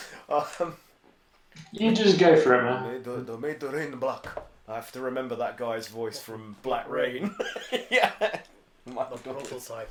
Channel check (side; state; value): both; identical; correlation 1.00